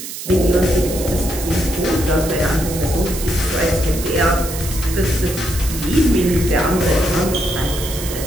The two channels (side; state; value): right; noise; hiss, 9 dB below the sound